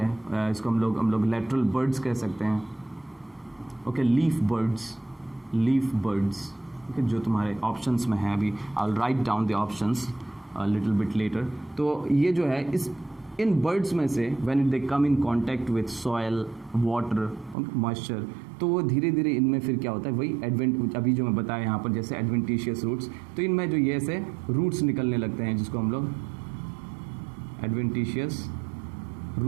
इसको हम लोग लेटरल बर्ड्स कह सकते हैं, ओके, लीफ बर्ड्स, ओके, जो तुम्हारे ऑप्शंस में है। अभी I will write down the options little bit letter. तो ये जो है इन बर्ड्स में से when they come in contact with soil, water, moisture, तो वो धीरे धीरे इनमें फिर क्या होता है, वही अभी जो मैं बताया यहाँ पर, जैसे एडवेंटिशियस रूट्स, तो इनमें जो ये ऐसे रूट्स निकलने लगते हैं, जिसको हम लोग एडवेंटिशियस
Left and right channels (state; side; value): drops out; left; at 17.6 s